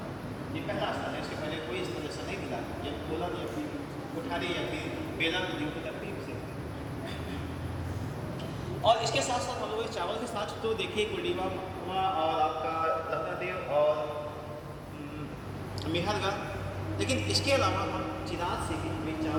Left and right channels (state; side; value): identical; both; correlation 1.00